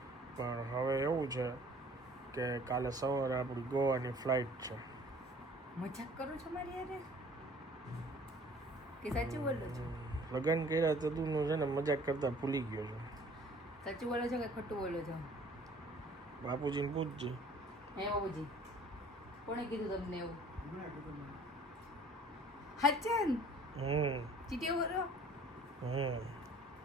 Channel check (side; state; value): both; normal; correlation 0.52